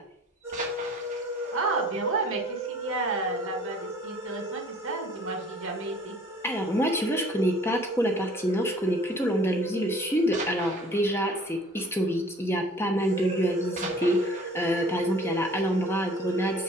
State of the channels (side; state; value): both; normal; correlation 0.51